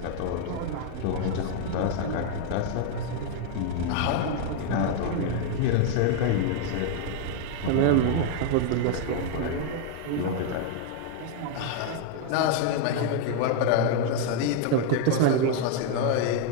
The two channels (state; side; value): different; both; correlation 0.00